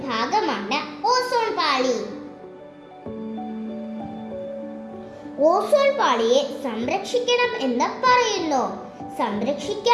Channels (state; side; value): identical; both; correlation 1.00